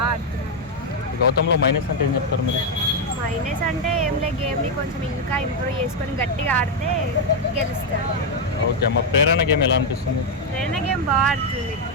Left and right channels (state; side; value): normal; both; correlation 0.02